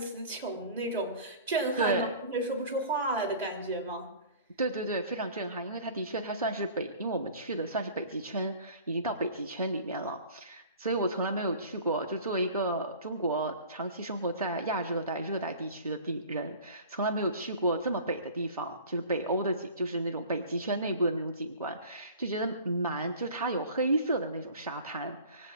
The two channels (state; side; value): inverted; both; correlation -0.43